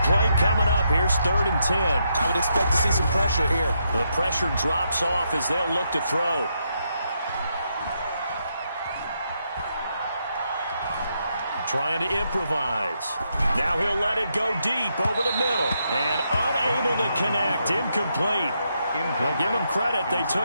play coming up. Here's 3rd and 10. I would expect to see some pressure here. The pressure drops off as they'll look to throw. Trying to improvise. Now he'll let it go deep over the middle. And unable to connect. Incomplete. I'll give them credit. They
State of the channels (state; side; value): inverted; both; correlation -0.80